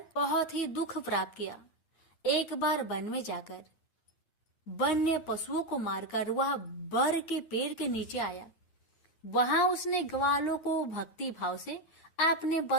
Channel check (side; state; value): right; late; 8.6 ms